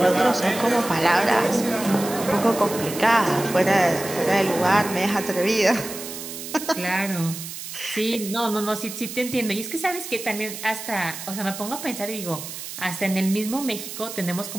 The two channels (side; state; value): right; noise; hiss, 9 dB below the sound